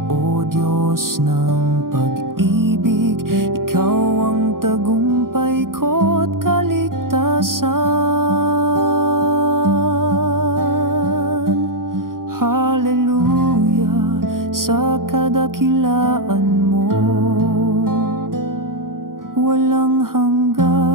O Diyos ng pag-ibig. Ikaw ang tagumpay ko't kaligtasan. Hallelujah sa kadakilaan mo, walang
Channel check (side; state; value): left; late; 0.91 ms